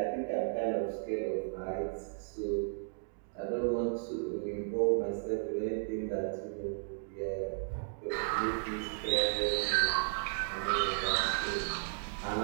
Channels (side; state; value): left; silent; digital silence